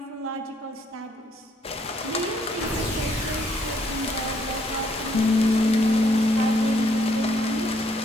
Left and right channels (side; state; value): both; normal; correlation 0.68